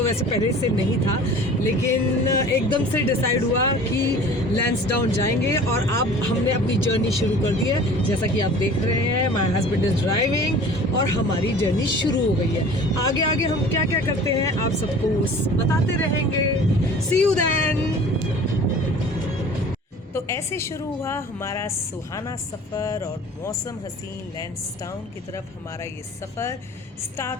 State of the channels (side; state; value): both; normal; correlation 0.44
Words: वैसे पहले से नहीं था, लेकिन एकदम से डिसाइड हुआ कि लैंसडाउन जाएंगे और अब हमने अपनी जर्नी शुरू कर दी है। जैसा कि आप देख रहे हैं, माय हस्बैंड इज ड्राइविंग और हमारी जर्नी शुरू हो गई है। आगे आगे हम क्या क्या करते हैं आप सबको बताते रहेंगे। सी यू देन। तो ऐसे शुरू हुआ हमारा सुहाना सफ़र और मौसम हसीन लैंसडाउन की तरफ हमारा ये सफ़र